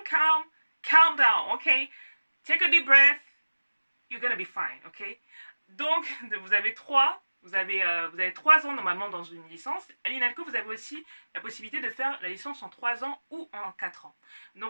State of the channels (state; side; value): inverted; both; correlation -1.00